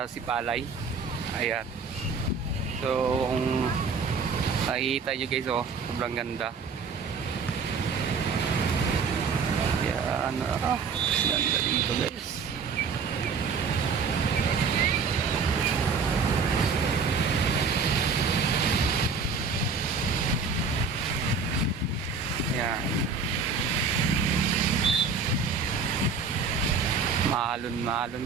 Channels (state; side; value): quieter; left; 5.2 dB